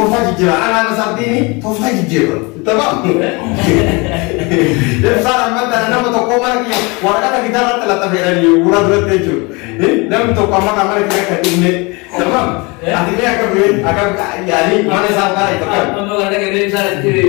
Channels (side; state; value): right; quieter; 27.4 dB